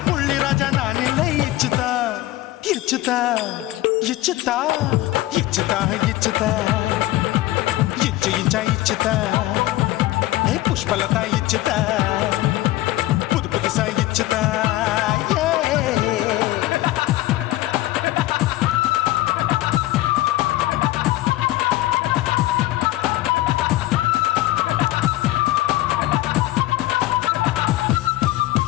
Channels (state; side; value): quieter; right; 16.6 dB